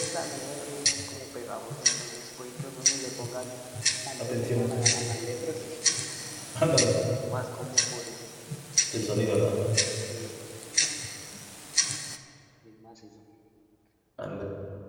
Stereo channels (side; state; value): both; identical; correlation 1.00